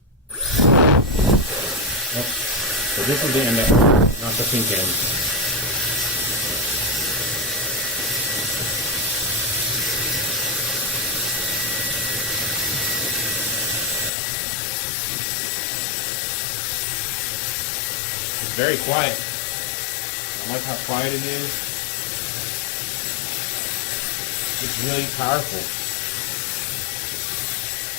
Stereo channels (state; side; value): drops out; right; at 14.1 s